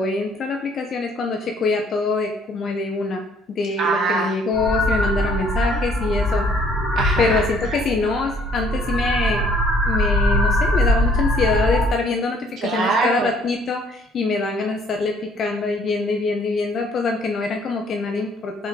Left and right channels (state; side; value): normal; both; correlation 0.61